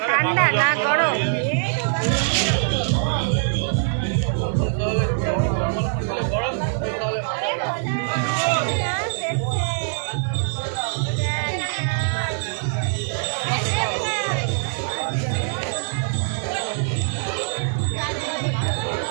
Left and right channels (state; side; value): silent; left; 63 dB below the other